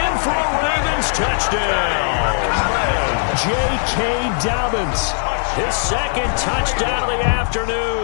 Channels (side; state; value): right; silent; 58 dB below the other